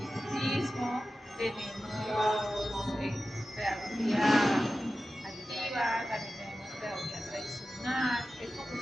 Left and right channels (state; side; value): normal; both; correlation 0.94